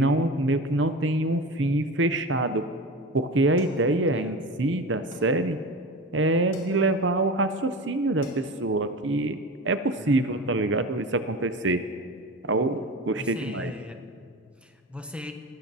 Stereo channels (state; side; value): normal; both; correlation 0.30